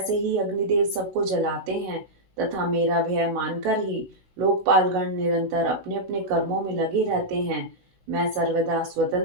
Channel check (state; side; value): late; left; 16 ms